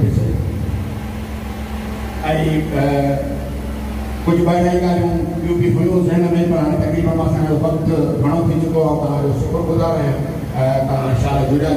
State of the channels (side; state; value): both; identical; correlation 1.00